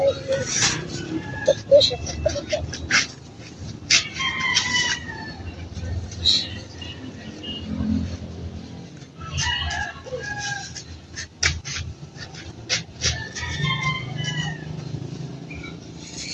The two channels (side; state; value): both; identical; correlation 1.00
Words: Ito po siya.